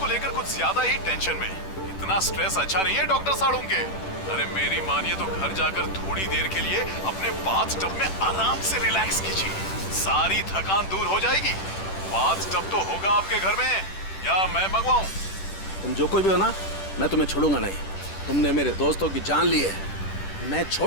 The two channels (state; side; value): late; right; 10 ms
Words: लेकर कुछ ज्यादा ही टेंशन में। इतना स्ट्रेस अच्छा नहीं है डॉक्टर साळुंखे। अरे मेरी मानिए तो घर जाकर थोड़ी देर के लिए अपने बाथटब में आराम से रिलैक्स कीजिए, सारी थकान दूर हो जाएगी। बाथटब तो होगा आपके घर में, या मैं मंगवाऊं? तुम जो कोई भी हो ना, मैं तुम्हें छोड़ूंगा नहीं। तुमने मेरे दोस्तों की जान ली है, मैं